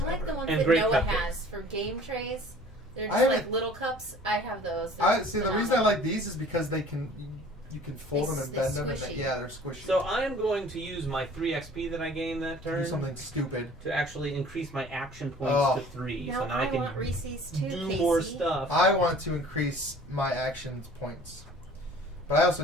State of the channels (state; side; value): normal; both; correlation 0.49